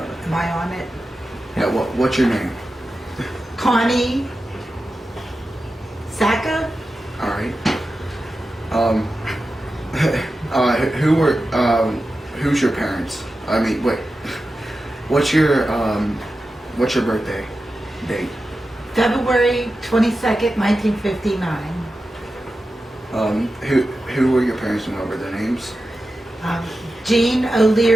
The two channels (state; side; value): normal; both; correlation 0.92